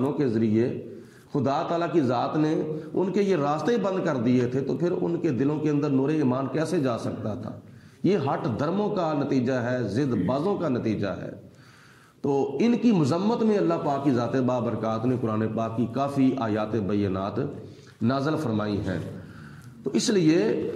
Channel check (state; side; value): identical; both; correlation 1.00